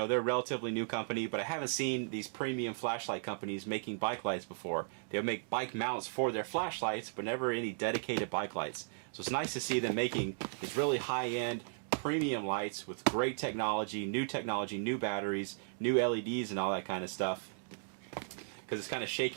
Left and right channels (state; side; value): silent; left; digital silence